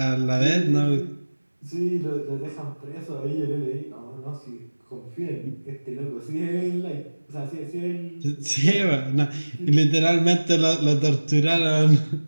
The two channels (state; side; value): inverted; both; correlation -1.00